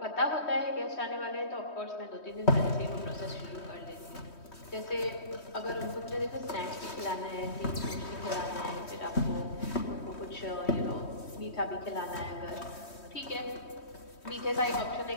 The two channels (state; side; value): late; right; 3.1 ms